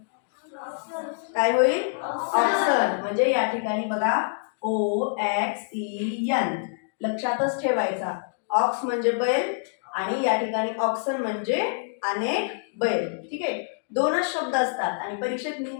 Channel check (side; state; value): right; silent; digital silence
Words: काय होईल? ऑक्सन. म्हणजे या ठिकाणी बघा OXEN लक्षातच ठेवायचा. ऑक्स म्हणजे बैल आणि या ठिकाणी ऑक्सन म्हणजे अनेक बैल. ठीक आहे, दोनच शब्द असतात आणि परीक्षेत